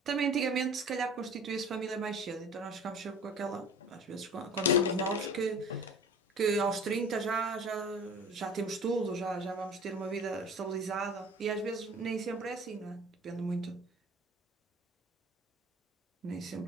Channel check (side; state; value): both; normal; correlation 0.42